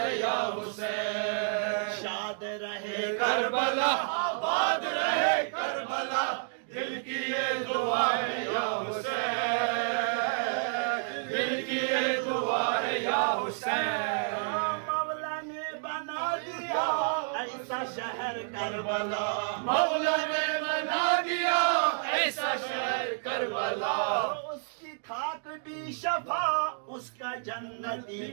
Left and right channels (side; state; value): left; silent; digital silence